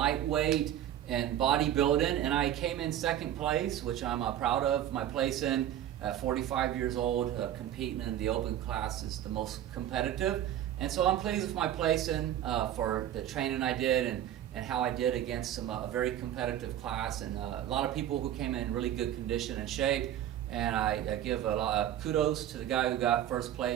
in bodybuilding, and I came in second place, which I'm proud of my place in. 45 years old, competing in the open class is the most competitive. And so I'm pleased with my placing for the training I did and how I did against a very competitive class, and a lot of people who came in really good condition and shape. And I give a lot of kudos to the guy who got first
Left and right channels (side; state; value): left; quieter; 11.3 dB